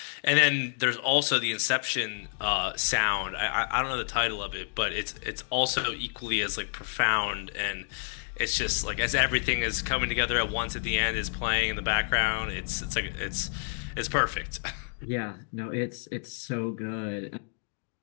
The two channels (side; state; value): right; silent; 58 dB below the other